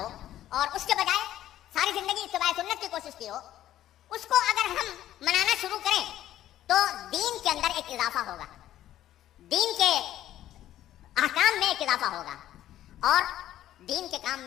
اور اس کے بجائے ساری زندگی اتباع سنت کی کوشش کی ہو، اس کو اگر ہم منانا شروع کریں تو دین کے اندر ایک اضافہ ہوگا، دین کے احکام میں ایک اضافہ ہوگا، اور دین کے کام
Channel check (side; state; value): right; quieter; 12.8 dB